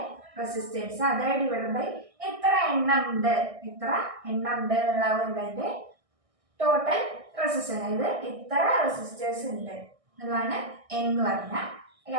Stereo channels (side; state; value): left; late; 1.6 ms